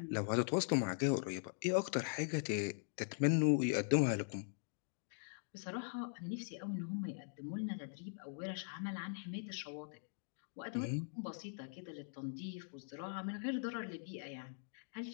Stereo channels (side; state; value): right; silent; digital silence